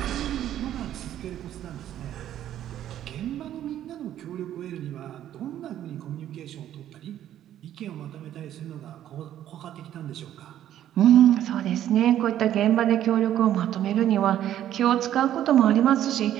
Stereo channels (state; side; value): quieter; left; 11.6 dB